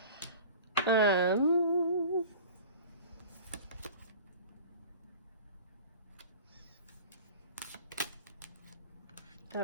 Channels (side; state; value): both; inverted; correlation -0.40